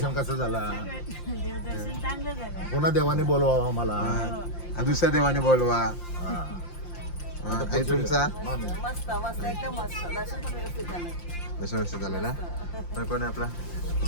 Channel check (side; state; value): right; late; 5.7 ms